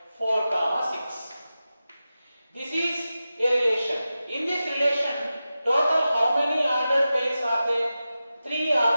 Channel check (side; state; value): both; inverted; correlation -0.93